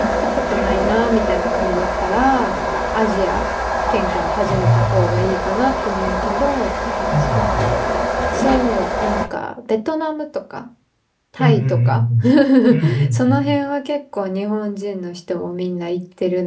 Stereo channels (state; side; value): identical; both; correlation 1.00